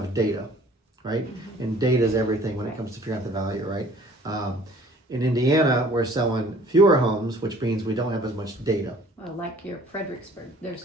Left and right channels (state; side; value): normal; both; correlation 0.54